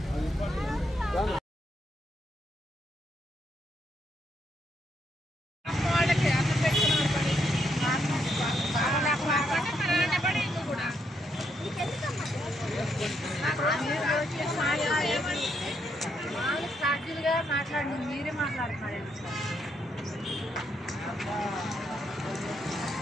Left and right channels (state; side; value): normal; both; correlation 0.77